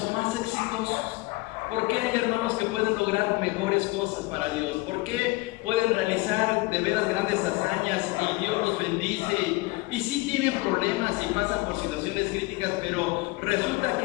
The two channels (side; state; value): right; quieter; 22.9 dB